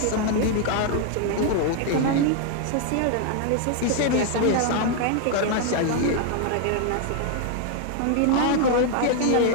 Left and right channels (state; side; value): different; both; correlation 0.00